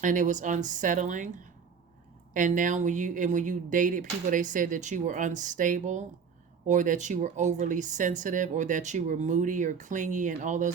and it was unsettling. And now when you dated people, they said that you were unstable, or that you were overly sensitive, or that you were moody or clingy and all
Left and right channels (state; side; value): quieter; left; 6.3 dB